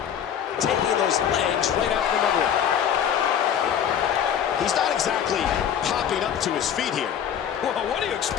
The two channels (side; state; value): right; quieter; 8.9 dB